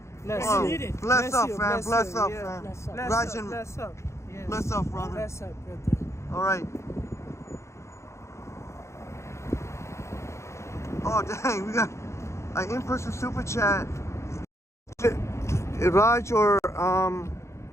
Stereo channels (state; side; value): late; right; 0.14 ms